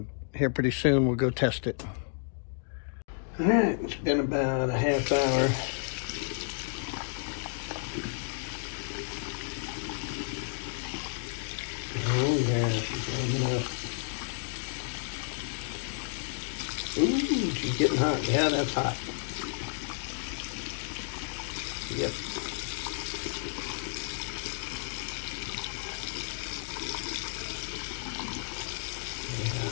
here pretty soon we'll go test it. All right, it's been about a half hour. Oh yeah, she's warming up. Ooh, she's getting hot. Yeah, that's hot. Yep.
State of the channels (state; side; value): silent; right; digital silence